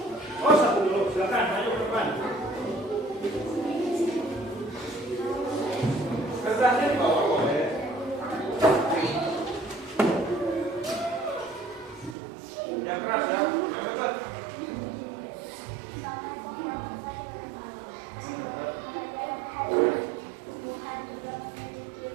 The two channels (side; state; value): left; drops out; at 12.2 s